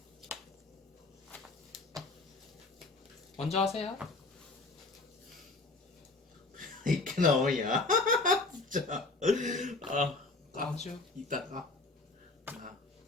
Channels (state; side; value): quieter; right; 3.3 dB